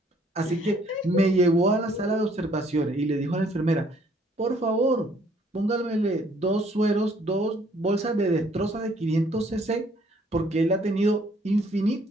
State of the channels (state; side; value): normal; both; correlation 0.62